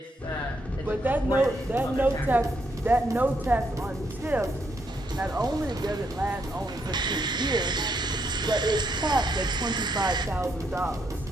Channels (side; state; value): both; normal; correlation 0.76